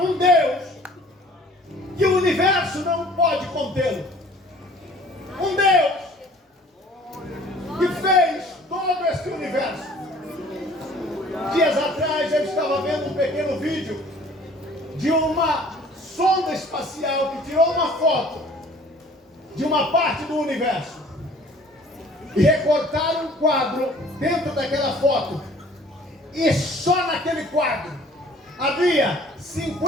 um Deus que o universo não pode contê-lo. Um Deus que fez todo esse universo. Dias atrás eu estava vendo um pequeno vídeo de uma sonda espacial que tirou uma foto de uma parte do universo e recortaram um quadro dentro daquela foto, e só naquele quadro havia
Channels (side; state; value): both; normal; correlation 0.52